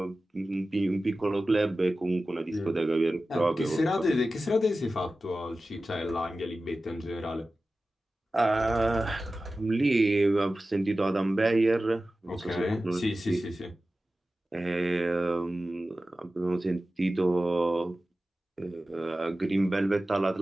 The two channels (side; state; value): both; normal; correlation 0.95